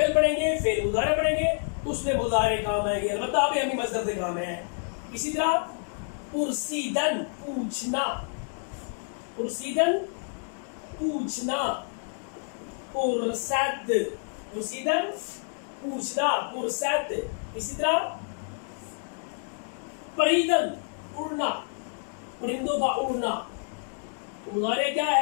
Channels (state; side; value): silent; right; 59 dB below the other